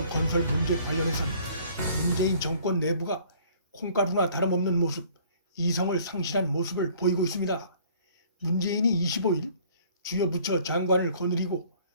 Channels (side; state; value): both; inverted; correlation -0.56